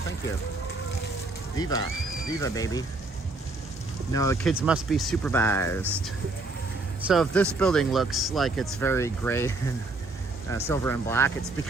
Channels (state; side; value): quieter; left; 3.2 dB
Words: thank you. Viva, baby. No, the kids must be supervised. So if this building looks like it's very gray and silver and black, it's